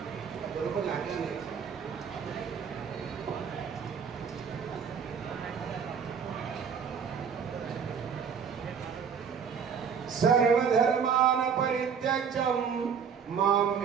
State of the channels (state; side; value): quieter; left; 6.8 dB